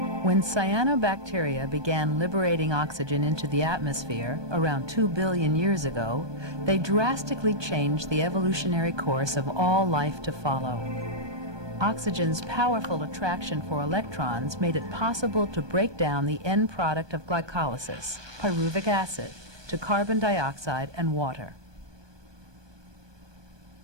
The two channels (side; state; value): left; late; 1.2 ms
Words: When cyanobacteria began liberating oxygen into the atmosphere around 2 billion years ago, they drastically changed the evolutionary course of all life to follow. Oxygen's powerful attraction for electrons made it possible to break down the end product of glycolysis, pyruvic acid, to carbon dioxide and water.